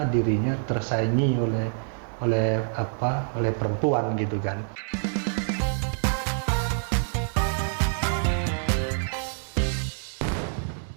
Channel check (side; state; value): left; silent; 61 dB below the other